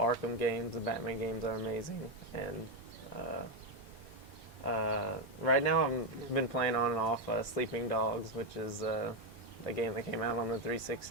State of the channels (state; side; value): normal; both; correlation 0.06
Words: games. The Batman games are amazing. And right now I've been playing on and off Sleeping Dogs, which is a game that came out on the